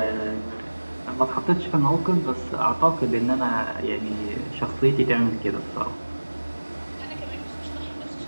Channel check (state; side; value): inverted; both; correlation -1.00